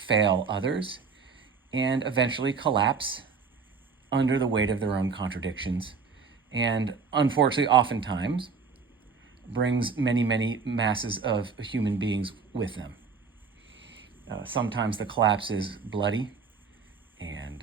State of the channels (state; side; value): quieter; left; 5.2 dB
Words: others and eventually collapse under the weight of their own contradictions, and unfortunately oftentimes brings many, many masses of human beings with them. Sometimes the collapse is bloody and